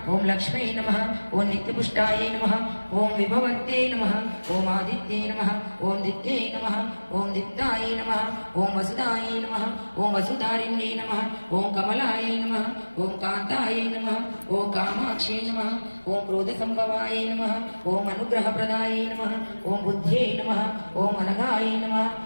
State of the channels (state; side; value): inverted; both; correlation -1.00